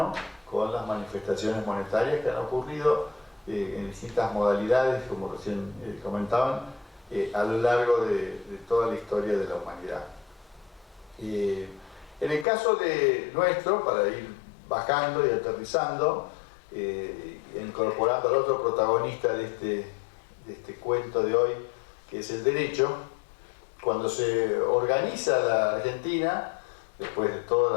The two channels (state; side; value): drops out; right; at 12.5 s